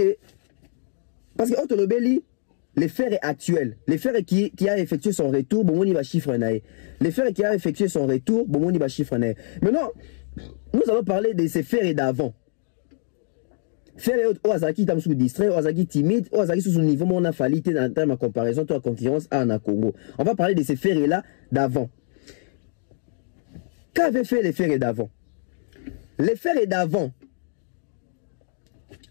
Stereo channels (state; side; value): silent; right; 63 dB below the other